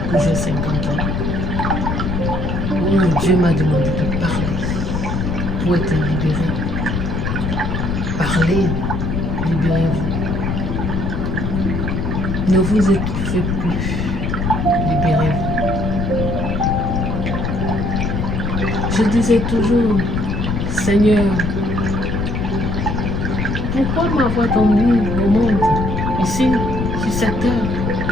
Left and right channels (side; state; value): left; noise; rumble, 2 dB below the sound